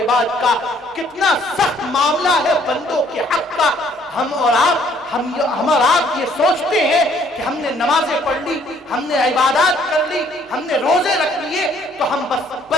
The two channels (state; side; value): normal; both; correlation 0.62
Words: کا، کتنا سخت معاملہ ہے بندوں کے حق کا۔ ہم اور آپ یہ سوچتے ہیں کہ ہم نے نمازیں پڑھ لی، ہم نے عبادات کر لی، ہم نے روزے رکھ لیے تو ہم بس